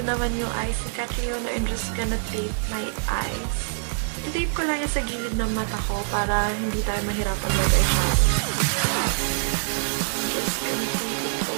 naman yung eyes ni Catriona, I'm just gonna tape my eyes. I-tape ko lang yung sa gilid ng mata ko para hindi tayo mahirapan mag-eyeshadow. Just gonna tape it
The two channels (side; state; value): left; silent; digital silence